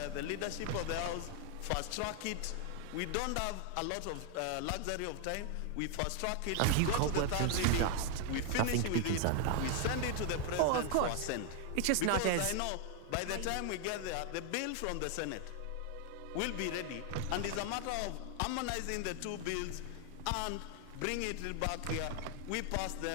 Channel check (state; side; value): different; both; correlation 0.00